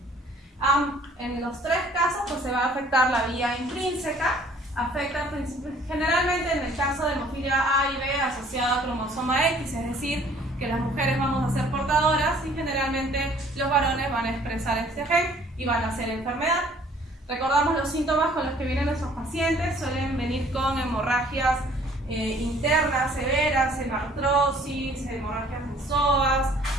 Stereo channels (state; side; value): normal; both; correlation 0.57